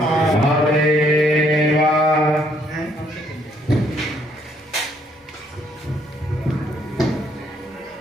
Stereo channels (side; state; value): both; normal; correlation 0.68